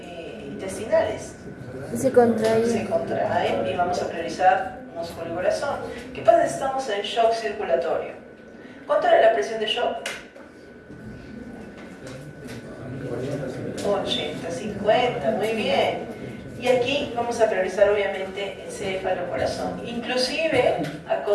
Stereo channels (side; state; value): both; identical; correlation 1.00